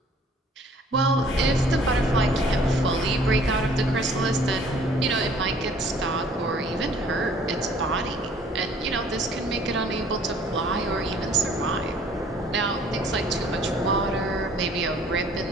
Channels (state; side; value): normal; both; correlation 0.55